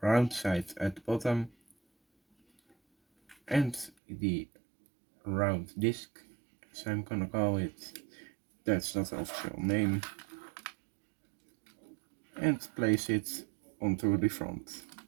sides at the bottom and the round disc, as I'm gonna call it. That's not the official name. And place it onto the front.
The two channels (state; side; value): drops out; left; at 3.9 s